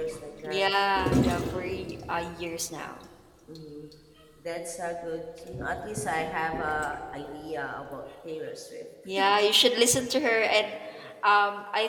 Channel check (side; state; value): both; identical; correlation 1.00